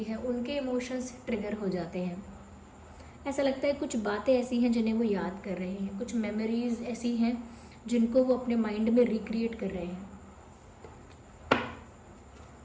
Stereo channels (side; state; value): both; identical; correlation 1.00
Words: है, उनके इमोशंस ट्रिगर हो जाते हैं। ऐसा लगता है कुछ बातें ऐसी हैं जिन्हें वो याद कर रहे हैं, कुछ मेमोरीज़ ऐसी हैं जिनको वो अपने माइंड में रिक्रिएट कर रहे हैं।